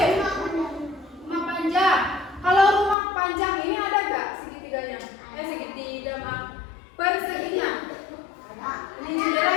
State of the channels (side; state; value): right; drops out; at 3.0 s